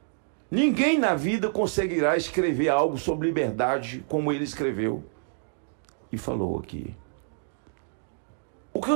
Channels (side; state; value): left; silent; digital silence